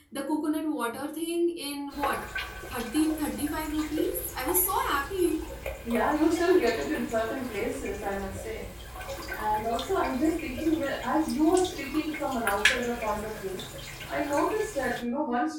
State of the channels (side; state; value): both; identical; correlation 1.00